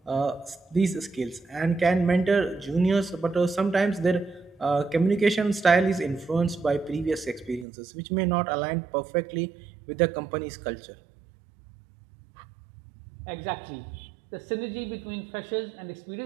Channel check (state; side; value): drops out; left; at 7.7 s